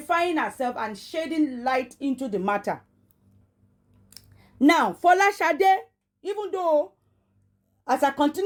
herself and shedding light into the matter. Now, Folashade, even though as I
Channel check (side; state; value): both; identical; correlation 1.00